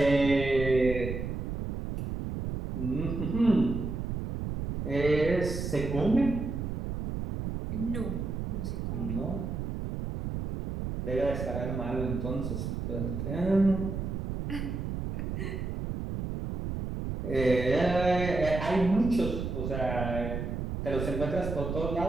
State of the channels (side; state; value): right; noise; rumble, 4 dB below the sound